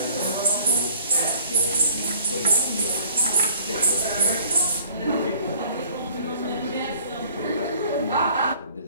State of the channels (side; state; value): both; inverted; correlation -0.54